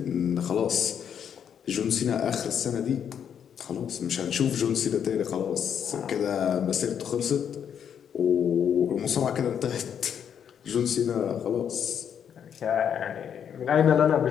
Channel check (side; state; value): right; quieter; 8.3 dB